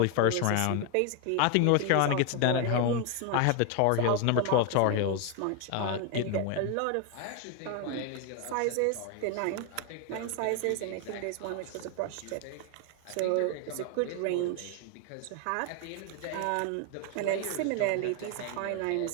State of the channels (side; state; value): both; different; correlation 0.01